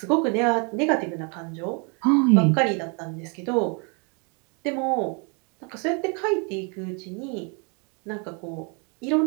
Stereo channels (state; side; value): quieter; left; 35.0 dB